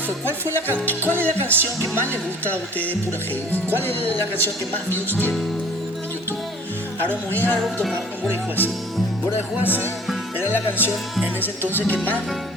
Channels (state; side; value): normal; both; correlation 0.49